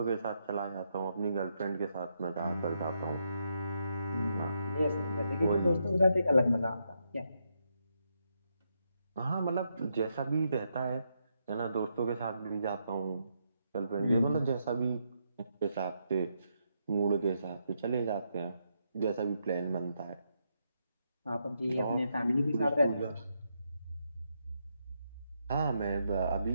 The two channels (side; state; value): both; inverted; correlation -0.80